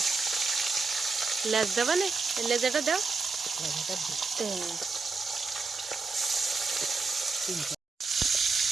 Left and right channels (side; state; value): left; quieter; 4.3 dB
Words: লেজ দেবে না লেজাটা দাও